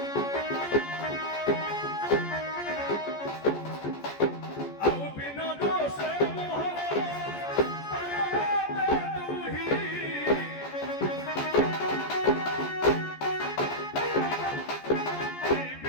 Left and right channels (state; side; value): late; right; 14 ms